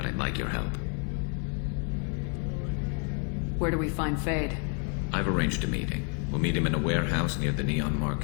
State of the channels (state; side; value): quieter; right; 39.6 dB